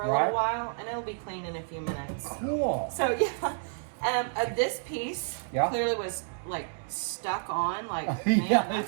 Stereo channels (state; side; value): silent; left; digital silence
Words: a Right. little while, and it'll be clean in a few minutes. Cool. So yeah, this piece clearly was like stuck on, like Yeah, man,